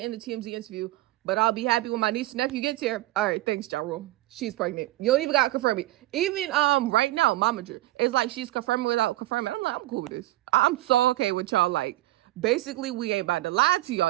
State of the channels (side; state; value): left; quieter; 17.5 dB